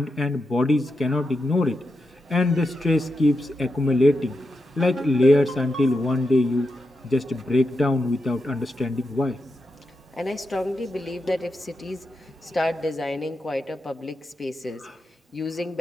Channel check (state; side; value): normal; both; correlation 0.87